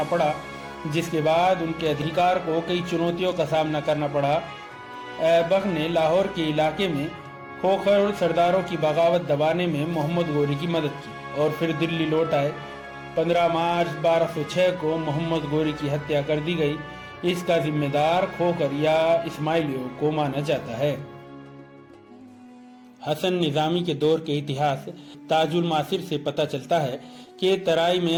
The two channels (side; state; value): both; identical; correlation 1.00